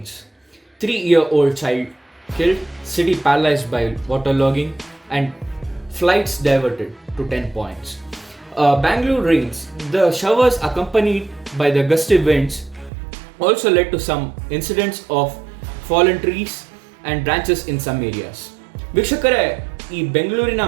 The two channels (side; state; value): left; drops out; at 12.9 s